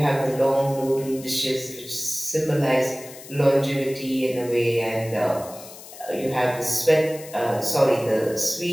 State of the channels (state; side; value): noise; left; hiss, 17 dB below the sound